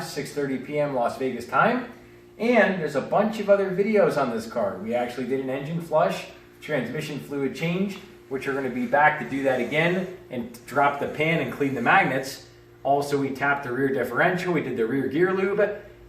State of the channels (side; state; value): both; identical; correlation 1.00